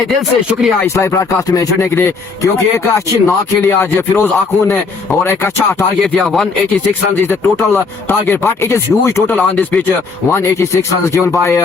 दिल से शुक्रिया इस लाइव ब्रॉडकास्ट में जुड़ने के लिए क्योंकि एक अच्छी नॉक खेली आज फिरोज आखून ने और एक अच्छा टारगेट दिया 186 run is the total target but it is huge total on this pitch 186 run given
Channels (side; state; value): right; quieter; 4.5 dB